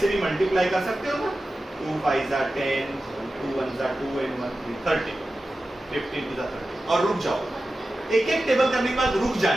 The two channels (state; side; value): normal; both; correlation 0.94